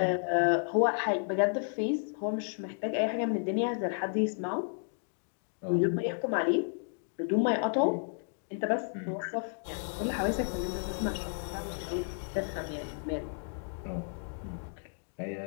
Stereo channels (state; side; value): silent; right; 56 dB below the other